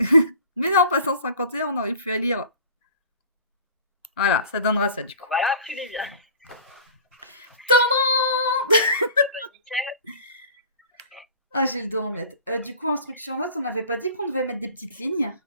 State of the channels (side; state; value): both; inverted; correlation -0.43